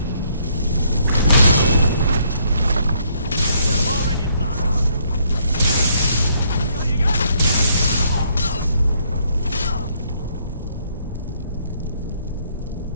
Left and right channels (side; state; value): both; inverted; correlation -0.69